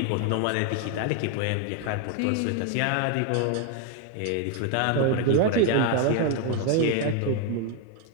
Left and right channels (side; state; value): both; different; correlation 0.01